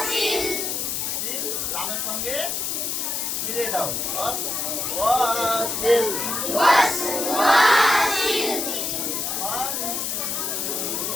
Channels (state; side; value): noise; left; hiss, 1 dB below the sound